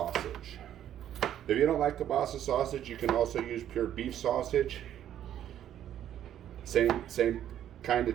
If you don't like kebasa sausage, you can also use pure beef sausage. Same kind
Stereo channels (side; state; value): left; quieter; 10.9 dB